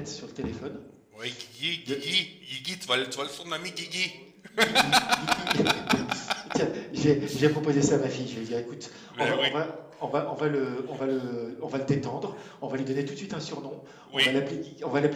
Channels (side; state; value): both; identical; correlation 1.00